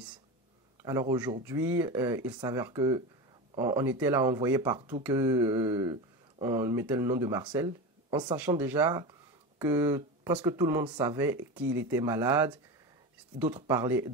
Alors aujourd'hui, il s'avère que on était là, on voyait partout que on mettait le nom de Marcel, en sachant déjà que presque tout le monde savait qu'il était malade. D'autres parlaient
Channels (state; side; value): normal; both; correlation 0.24